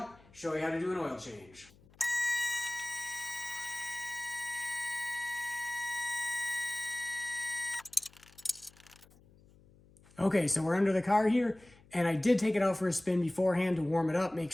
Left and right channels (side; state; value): left; noise; hum, 27 dB below the sound